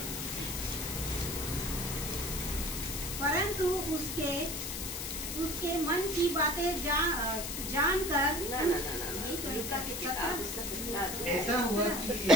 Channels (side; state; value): left; noise; hiss, 5 dB below the sound